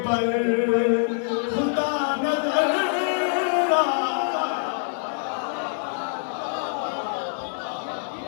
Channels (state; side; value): silent; right; digital silence